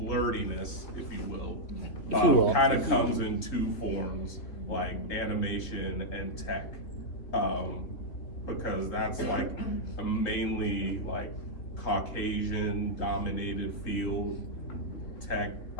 if you will, kind of comes in two forms, like animation and tech, because that's like a mainly like Caucasian dominated field, tech.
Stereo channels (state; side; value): late; right; 3.4 ms